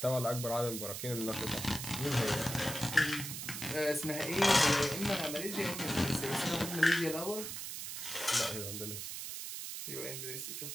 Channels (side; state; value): right; noise; hiss, 6 dB below the sound